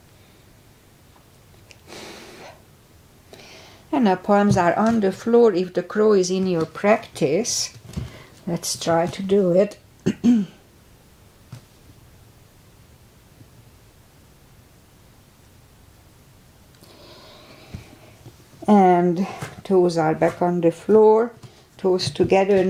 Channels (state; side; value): identical; both; correlation 1.00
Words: And now palms are on the floor. If the crow is in your practice, let's try to do it. And toes are back on the floor, toes together,